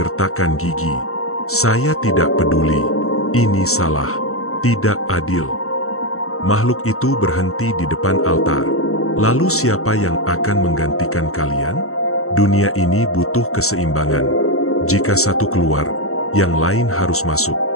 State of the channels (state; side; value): late; right; 0.64 ms